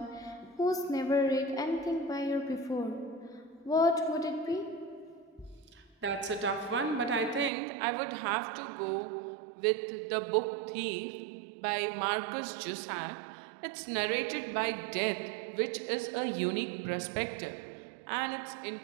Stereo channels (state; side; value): drops out; left; at 7.5 s